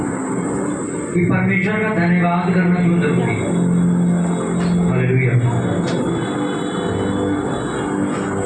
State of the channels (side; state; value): both; identical; correlation 1.00